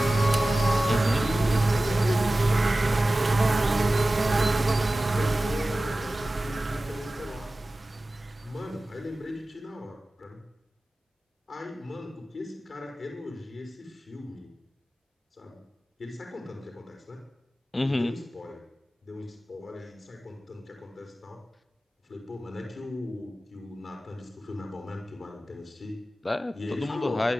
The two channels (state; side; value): normal; both; correlation 0.96